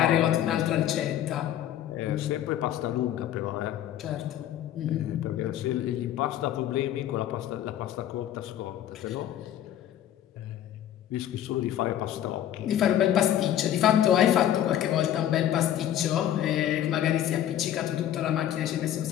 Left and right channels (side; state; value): right; quieter; 11.5 dB